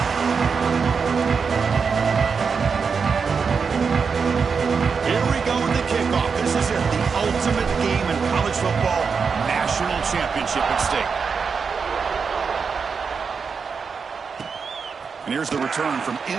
And here's the return from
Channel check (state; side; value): quieter; left; 5.6 dB